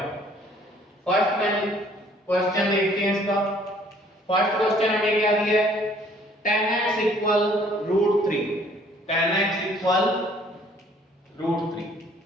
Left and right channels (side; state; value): both; normal; correlation 0.59